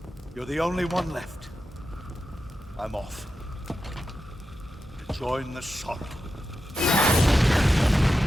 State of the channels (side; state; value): both; normal; correlation 0.90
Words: You're the only one left. I'm off. To join the sorrow.